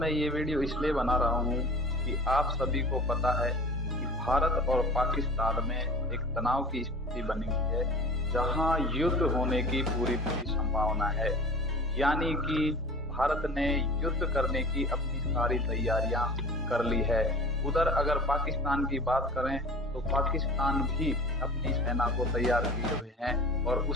ये वीडियो इसलिए बना रहा हूँ कि आप सभी को पता है कि भारत और पाकिस्तान में एक तनाव की स्थिति बनी हुई है, जहाँ युद्ध होने की पूरी पूरी संभावना है। यानी कि भारत ने युद्ध करने की अपनी सारी तैयारियां कर ली है। उधर अगर पाकिस्तान की बात करें तो पाकिस्तान भी अपनी सेना को तैयार किए हुए हैं और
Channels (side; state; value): both; normal; correlation 0.39